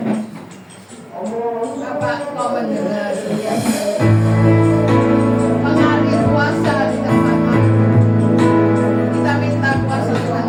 Bapak, kau mendengar mengalir kuasa di tempat kami. Kita minta kuasa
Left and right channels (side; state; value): both; identical; correlation 1.00